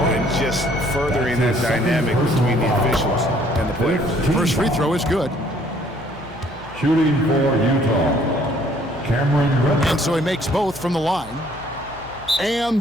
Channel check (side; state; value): left; noise; hum, 20 dB below the sound